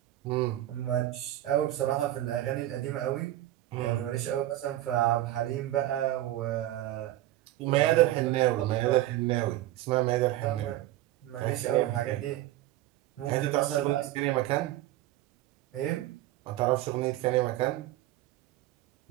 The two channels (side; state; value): left; quieter; 14.9 dB